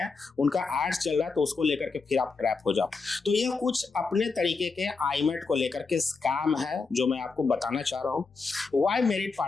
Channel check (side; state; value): right; quieter; 4.4 dB